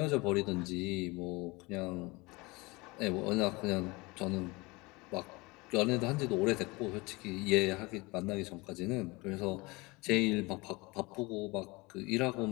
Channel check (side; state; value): right; quieter; 24.3 dB